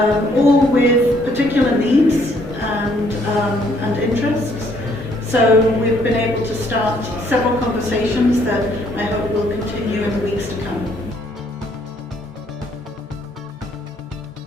all with particular needs and interests. So we've been able to start several conversations that I hope will continue in the weeks to come.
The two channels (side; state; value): both; normal; correlation 0.66